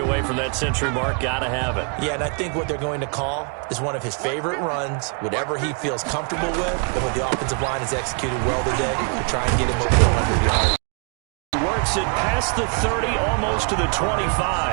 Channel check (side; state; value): left; quieter; 38.9 dB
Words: away from that century mark. Got to have it. Yeah, and I think what they're going to call is one of his favorite runs, whatever he feels comfortable with, and what the offensive line has executed well today to try and get him over 100 yards. Works it past the 30, almost to the